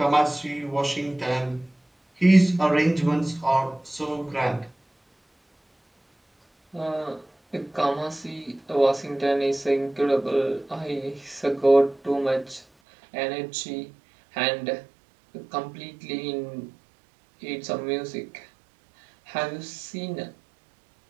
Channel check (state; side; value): drops out; left; at 12.7 s